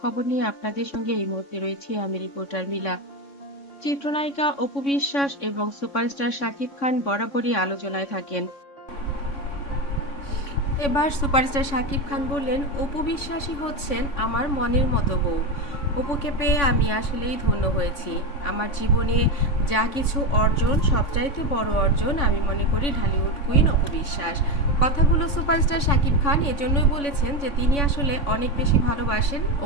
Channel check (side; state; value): right; late; 3.6 ms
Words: খবর নিয়ে আপনাদের সঙ্গে এই মুহূর্তে রয়েছি আমি রিপোর্টার মিলা। চিত্রনায়িকা অপু বিশ্বাস এবং সুপারস্টার শাকিব খান বরাবরই আলোচনায় থাকেন। এবার সুপারস্টার শাকিব খান বললেন, অপু বিশ্বাসই হচ্ছেন আমার মনের মতো বউ। অপুকে পেয়ে আমি আসলেই ধন্য হয়েছি। আমার জীবনে যা কিছু অর্জন, সবচাইতে বড় অর্জন আমি মনে করি ঢালিউড কুইন অপু বিশ্বাস। কথাগুলো সুপারস্টার শাকিব খান এজন্যই বলেছেন যে তিনি আসলে অনেক বেশি ভালোবাসেন